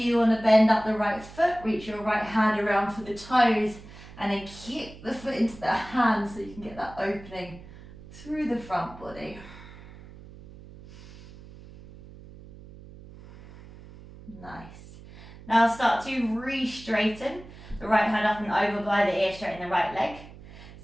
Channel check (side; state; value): right; noise; hum, 18 dB below the sound